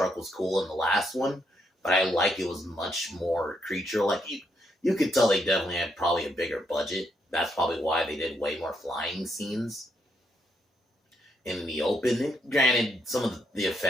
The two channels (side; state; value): both; normal; correlation 0.76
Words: was cool in the last one, but I like it was much more creature-like. You could tell they definitely had probably a bigger budget. That's probably why they did way more flying scenes in the open. And granted, some of the